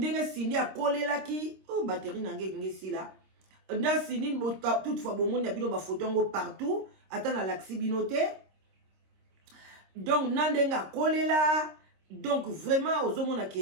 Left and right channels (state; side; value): late; left; 26 ms